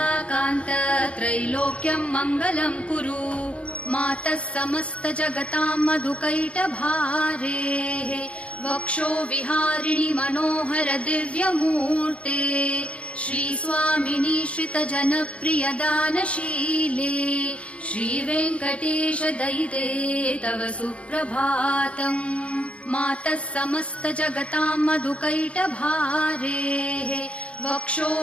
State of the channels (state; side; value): late; right; 0.061 ms